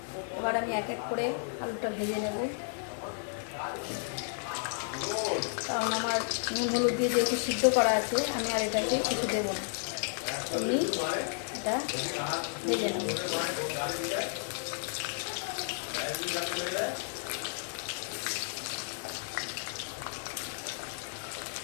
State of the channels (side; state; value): right; silent; 56 dB below the other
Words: এবার আমি এক এক করে আলুটা ভেজে নেব, কারণ আমার নুন হলুদ দিয়ে যেহেতু সিদ্ধ করা আছে আমি আর এটাকে কিছু দেবো না। আমি এটা ভেজে নেব।